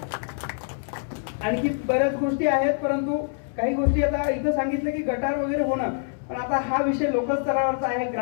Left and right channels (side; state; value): right; silent; 62 dB below the other